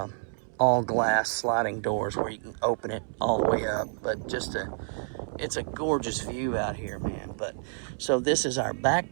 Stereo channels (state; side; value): silent; left; 59 dB below the other